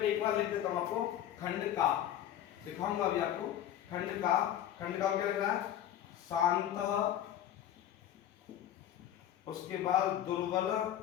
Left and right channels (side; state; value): right; quieter; 11.2 dB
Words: बार लिख देता हूं आपको, खंड का दिखाऊंगा अभी आपको। खंड का क्या लिख रहा है? शांत, उसके बाद दुर्बल,